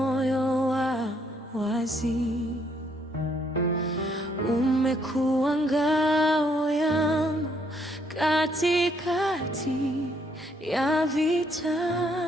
wa wazi, umekuwa ngao yangu katikati ya vita.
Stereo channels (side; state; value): both; normal; correlation 0.70